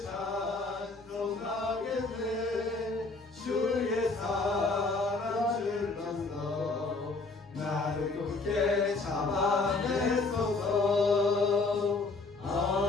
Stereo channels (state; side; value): quieter; right; 3.6 dB